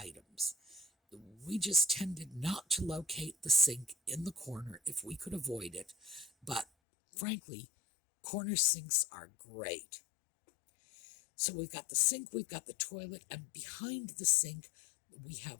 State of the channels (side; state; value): right; drops out; at 6.7 s